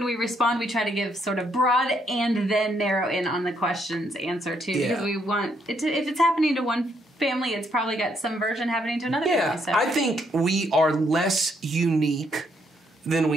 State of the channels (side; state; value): both; normal; correlation 0.73